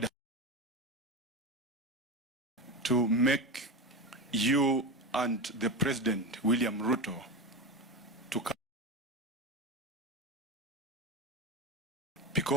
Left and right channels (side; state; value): both; normal; correlation 0.20